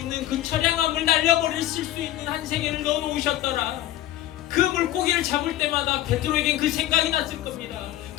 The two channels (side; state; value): right; quieter; 14.0 dB